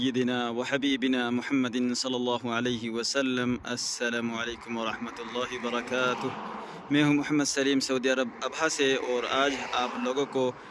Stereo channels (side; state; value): both; identical; correlation 1.00